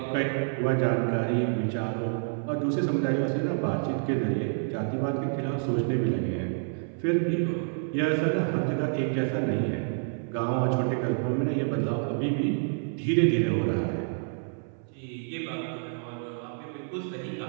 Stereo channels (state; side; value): silent; left; 57 dB below the other